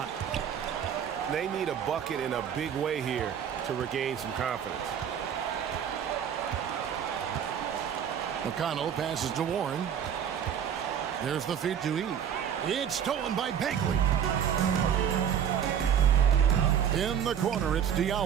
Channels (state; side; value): quieter; left; 8.7 dB